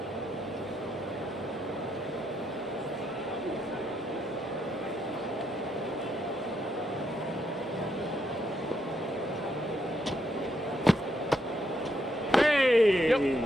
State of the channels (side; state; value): both; normal; correlation 0.77